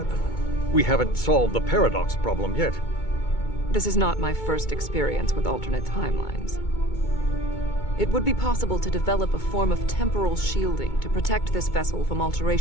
We haven't solved the paradox problem yet. This is not my first experience with alternate timelines. It would be possible to develop a form of temporal shielding to protect this vessel from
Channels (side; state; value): right; late; 2.2 ms